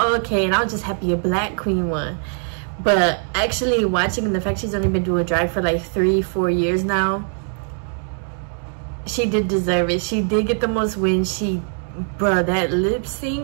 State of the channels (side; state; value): left; silent; 58 dB below the other